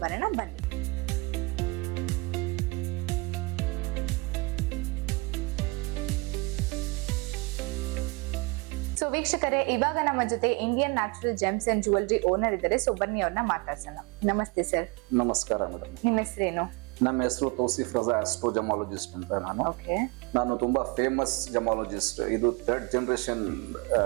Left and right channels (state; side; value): quieter; left; 27.6 dB